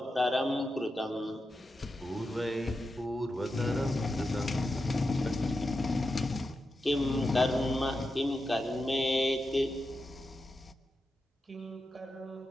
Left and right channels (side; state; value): both; normal; correlation 0.89